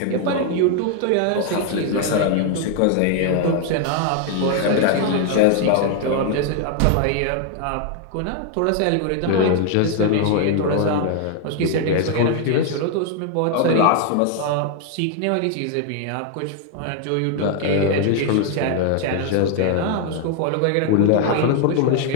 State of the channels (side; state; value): both; different; correlation 0.00